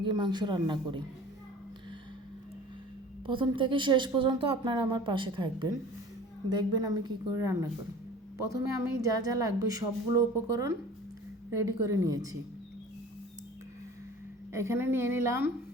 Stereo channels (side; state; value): both; normal; correlation 0.43